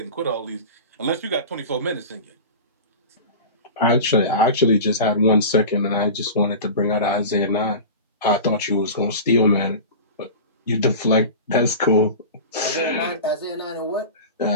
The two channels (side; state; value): both; inverted; correlation -0.31